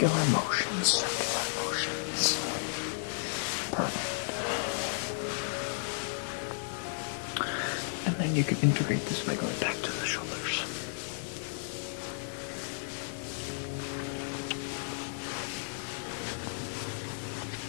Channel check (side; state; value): right; silent; digital silence